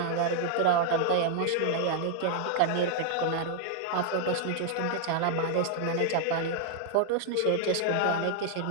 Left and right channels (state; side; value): different; both; correlation 0.00